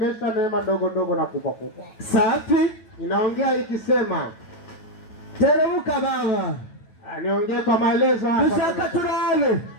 neema ndogo ndogo na kubwa kubwa. Safi. Inaongea ikisema teremuka baba. Niongee kwa maelezo hapa. Dushaka turabe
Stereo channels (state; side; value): late; right; 9.1 ms